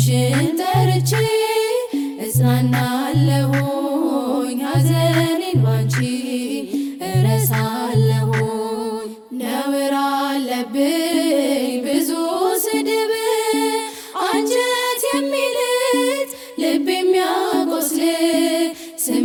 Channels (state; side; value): identical; both; correlation 1.00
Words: ጠርቼ እጽናናለሁኝ ሐዘኔን ባንቺ እረሳለሁኝ። ነውር አለብኝ ብዙ ስድብ አንጀት የሚልጥ ልብ የሚያቆስል